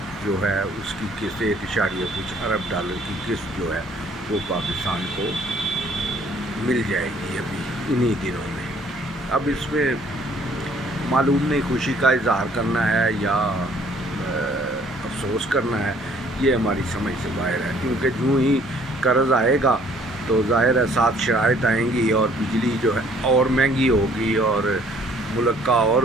जो है उसकी किस्त 1 कुछ $1 की किस्त जो है वो पाकिस्तान को मिल जाएगी अभी इन्हीं दिनों में। अब इसमें मालूम नहीं खुशी का इजहार करना है या अफसोस करना है, ये हमारी समझ से बाहर है, क्योंकि जो ही कर्ज़ आएगा तो ज़ाहिर है साथ शराइत आएंगी और बिजली जो है और महंगी होगी और मुल्क का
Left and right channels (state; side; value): normal; both; correlation 0.60